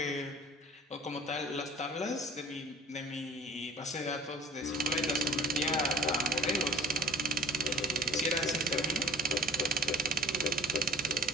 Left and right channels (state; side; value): normal; both; correlation 0.48